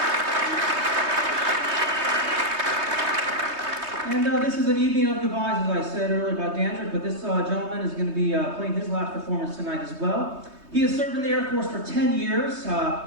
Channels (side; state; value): left; late; 3.2 ms